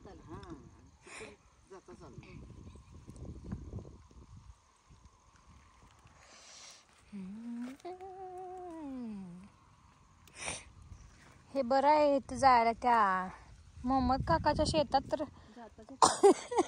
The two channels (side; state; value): both; identical; correlation 1.00